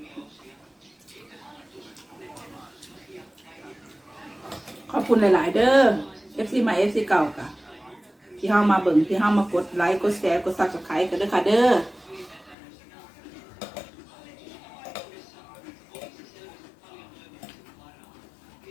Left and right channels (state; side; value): drops out; right; at 12.6 s